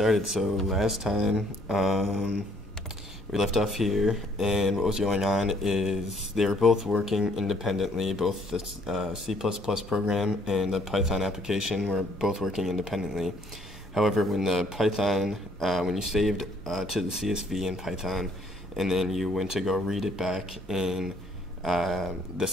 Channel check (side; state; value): both; normal; correlation 0.64